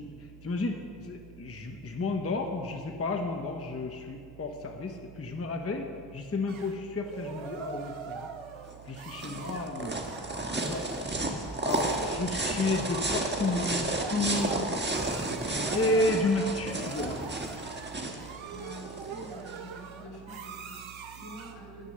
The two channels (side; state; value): right; noise; hum, 18 dB below the sound